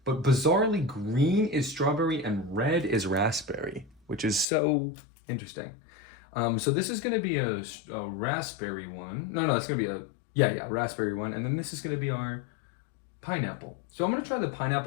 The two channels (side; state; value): right; drops out; at 4.5 s